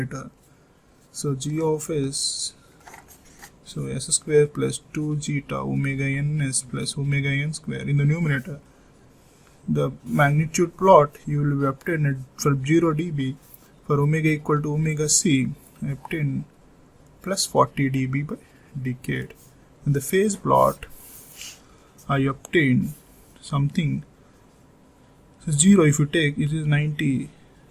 so g of s, so s square plus 2 zeta omega ns plus omega n square in the numerator. The magnitude plot you will obtain it for 0 dB for omega equal to omega c, I obtain plus 40 dB by decade. In the phase plot, I obtain something. So 0 if you take, it is 90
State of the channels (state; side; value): identical; both; correlation 1.00